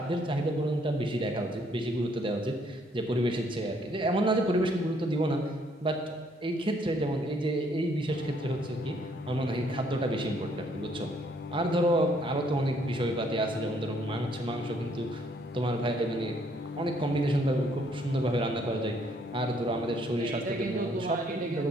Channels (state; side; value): normal; both; correlation 0.67